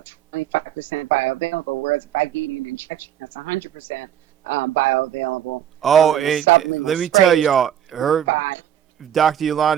25% bioavailable. Whereas if I give you an injection, that's 100% bioavailable. Oh, and let me tell y'all, Dr.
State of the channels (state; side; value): quieter; left; 10.4 dB